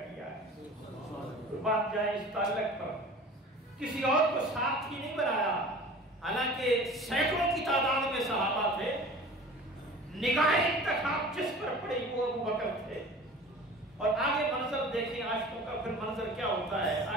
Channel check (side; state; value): both; normal; correlation 0.41